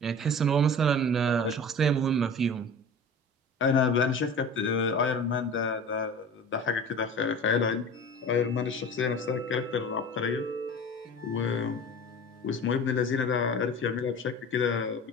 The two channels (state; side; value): normal; both; correlation 0.37